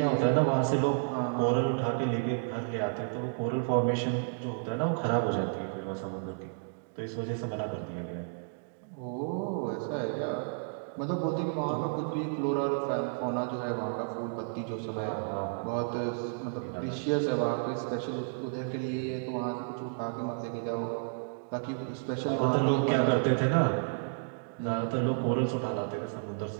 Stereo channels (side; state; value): left; silent; digital silence